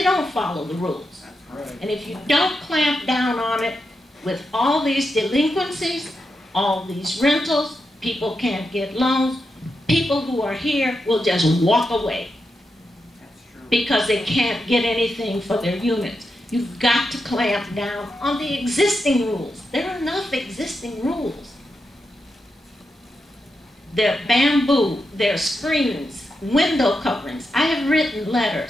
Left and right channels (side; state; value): both; normal; correlation 0.87